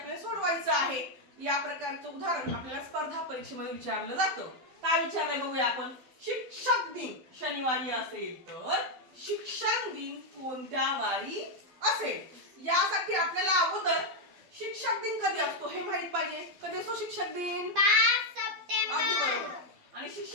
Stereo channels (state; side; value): late; left; 12 ms